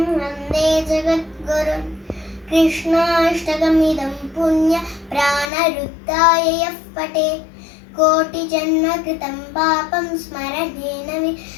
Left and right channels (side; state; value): right; drops out; at 5.5 s